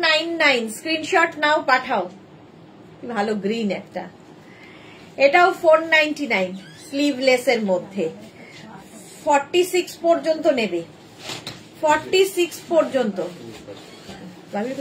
স্ক্রিনশট নাও, পাঠাও। ভালো গ্রিন একটা, এটাও 499 স্লিভলেস এর মধ্যে। 46 পর্যন্ত নেবে, 46 পর্যন্ত। ভাবির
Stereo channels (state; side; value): identical; both; correlation 1.00